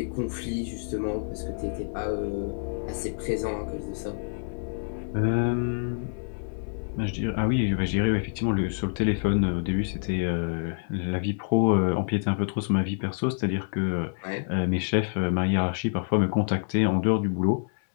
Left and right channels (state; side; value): silent; right; 60 dB below the other